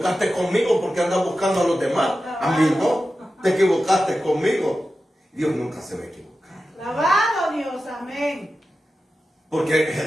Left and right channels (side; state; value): both; normal; correlation 0.92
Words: conmigo porque andas buscando a los demás. A mí no. Te equivocaste conmigo. Dios nunca se va a equivocar. Lavado Dios, amén. Porque